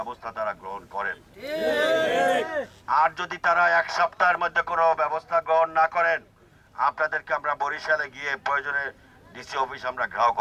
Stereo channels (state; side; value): identical; both; correlation 1.00